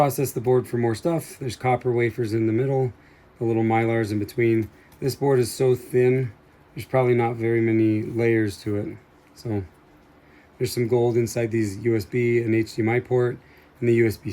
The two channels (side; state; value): both; identical; correlation 1.00